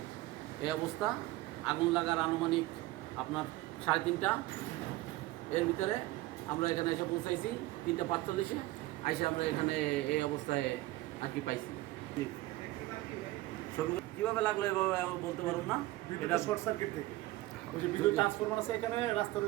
এই অবস্থা, আগুন লাগার আনুমানিক আপনার 3:30 এর ভিতরে আমরা এখানে এসে পৌঁছাইছি। 3:45 এসে আমরা এখানে এই অবস্থায় আর কি পাইছি। কীভাবে লাগলো এভাবে আমি বলতে পারব না। এটা শর্ট সার্কিট থেকে ওই যে বিদ্যুৎ ট্রান্সফরমার আছে এখানে রাস্তার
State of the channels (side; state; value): left; quieter; 18.2 dB